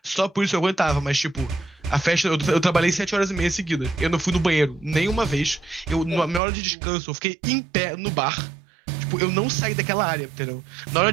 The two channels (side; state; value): left; drops out; at 6.4 s